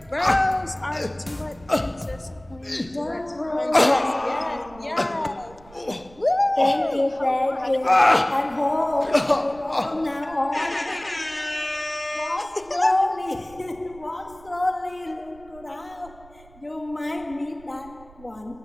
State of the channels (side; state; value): right; noise; rumble, 23 dB below the sound